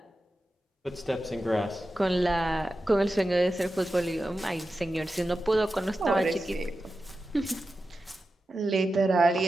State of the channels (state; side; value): normal; both; correlation 0.92